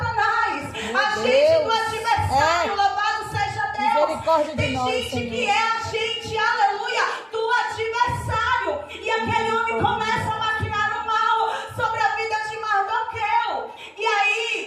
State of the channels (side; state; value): both; identical; correlation 1.00